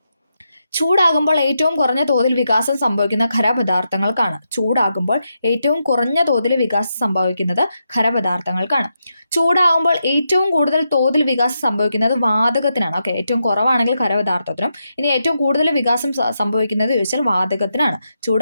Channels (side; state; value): both; inverted; correlation -0.84